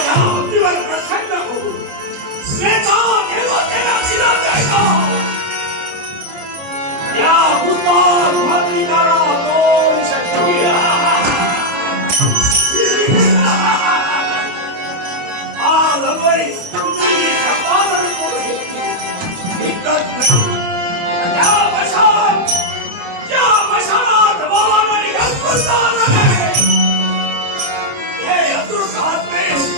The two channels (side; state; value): left; late; 28 ms